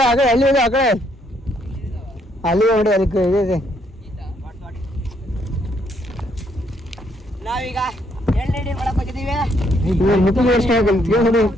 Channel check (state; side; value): normal; both; correlation 0.71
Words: ಆಕ ಎಲ್ಲಿ ಇದೆ ಆ ಕಡೆ ಅಲ್ಲಿ ನೋಡಿ ಅದಕ್ಕೆ ಇದೆ ನಾವೀಗ ಎಣ್ಣೆ ಮಾಡಕ್ ಹೋಗಿದ್ದೀವಿ